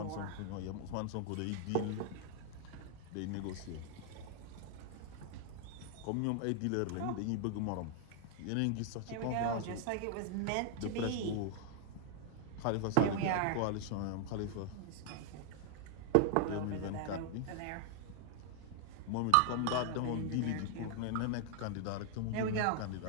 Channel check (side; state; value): both; different; correlation 0.00